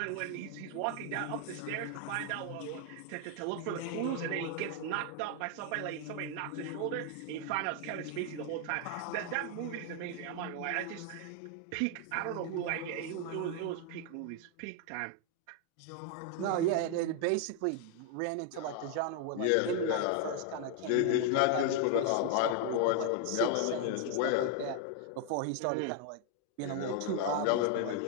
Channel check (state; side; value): different; both; correlation 0.00